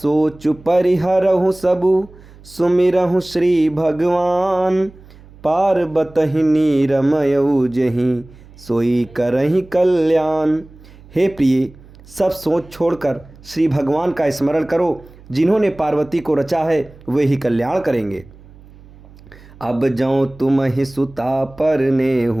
परिहरहु सबु सुमिरहु श्री भगवान, पार्वतहि नीरमयउ जहि सोई करहि कल्याण। हे प्रिय, सब सोच छोड़कर श्री भगवान का स्मरण करो। जिन्होंने पार्वती को रचा है वे ही कल्याण करेंगे। अब जौं तुम ही सुता परने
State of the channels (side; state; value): right; noise; hum, 23 dB below the sound